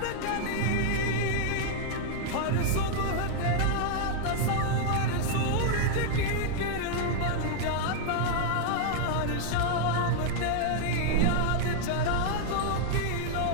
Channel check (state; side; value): different; both; correlation 0.00